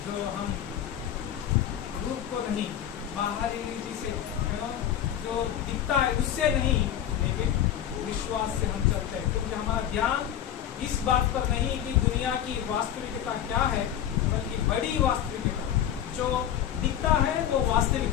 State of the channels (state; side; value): quieter; right; 10.4 dB